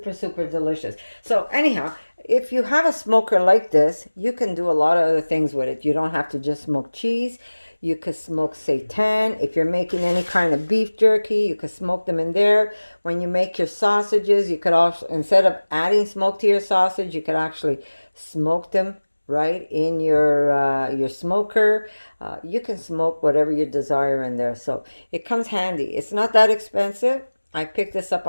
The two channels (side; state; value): both; inverted; correlation -1.00